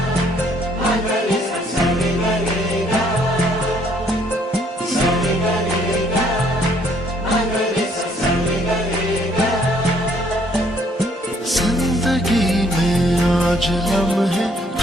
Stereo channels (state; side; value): normal; both; correlation 0.64